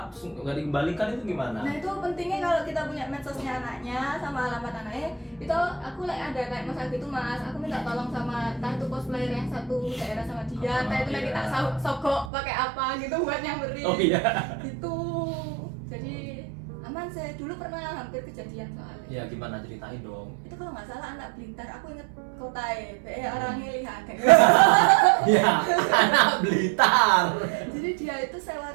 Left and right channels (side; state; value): left; drops out; at 12.3 s